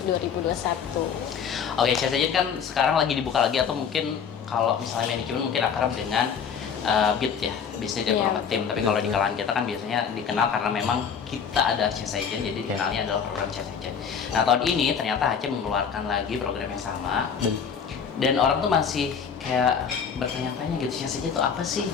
2021. Oke, change agent kan sekarang lagi dibuka lagi, atau mungkin kalau misalnya manajemen mungkin akrab dengan BIT ya, Business Development Team. Tapi kalau di kalangan kita kan biasanya dikenal karena memang kita ada change agent, jadi dikenalnya adalah program change agent. Nah, tahun ini ternyata HC mengeluarkan lagi program yang sama, dan orang tuh masih kayak bertanya-tanya gitu, change agent itu apa sih,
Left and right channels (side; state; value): right; quieter; 6.9 dB